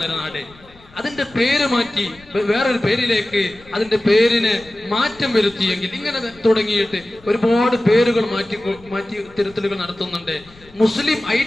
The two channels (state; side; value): noise; left; rumble, 25 dB below the sound